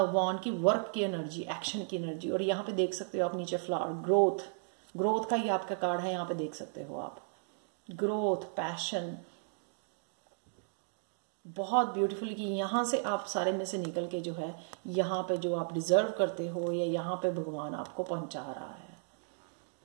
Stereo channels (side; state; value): left; silent; digital silence